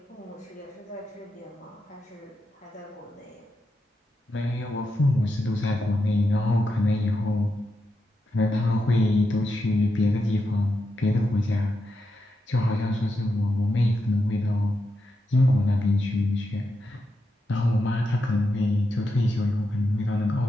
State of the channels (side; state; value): both; normal; correlation 0.86